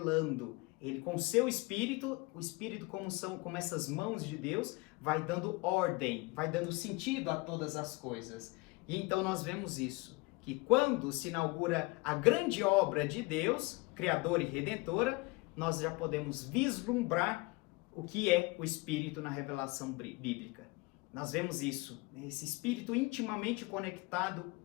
Ele, com seu Espírito, o Espírito como essas mãos de Deus, vai dando ordem, vai dando sentido a todas as coisas. E então nós vemos isso, que quando se inaugura a grande obra de Deus, Criadora e Redentora, nós já podemos vislumbrar o que é o Espírito na revelação bíblica. Nós vemos isso, esse Espírito intimamente conectado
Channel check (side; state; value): right; quieter; 24.6 dB